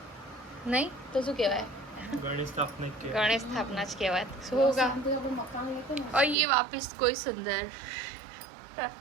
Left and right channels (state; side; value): drops out; left; at 6.4 s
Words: नहीं तो शू कहवाय गणेश स्थापना गणेश स्थापना ज कहवाय શું होगा। और ये वापस कोई सुंदर